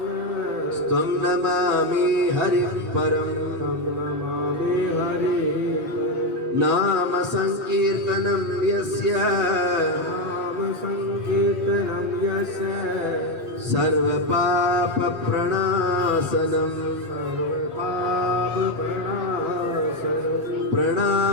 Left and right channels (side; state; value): left; late; 7.8 ms